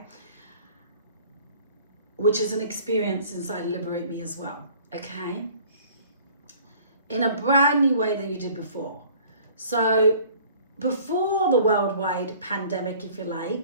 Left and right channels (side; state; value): both; inverted; correlation -0.51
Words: Which is an experience inside Liberate Me as well, okay? In a brand new way than you did before. So before the worldwide pandemic, if you